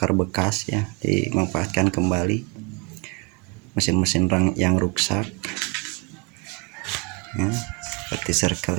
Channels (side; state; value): left; quieter; 29.6 dB